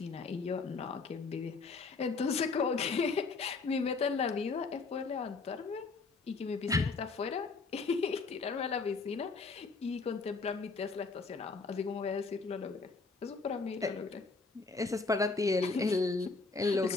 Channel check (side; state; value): right; quieter; 4.2 dB